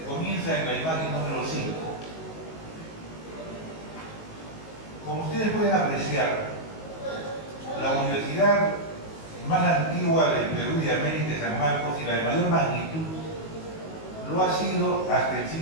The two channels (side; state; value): right; late; 19 ms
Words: Comienza en la imagen número 5. Como ustedes pueden apreciar, la universidad más antigua del Perú y de América, San Marcos, y la de mayor magnitud, lo ha sido hasta el